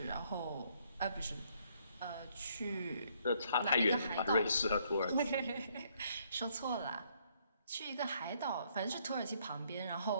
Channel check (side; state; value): both; inverted; correlation -0.69